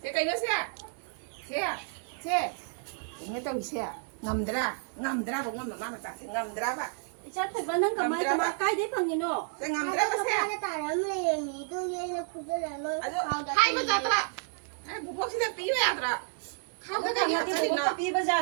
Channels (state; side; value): silent; left; 57 dB below the other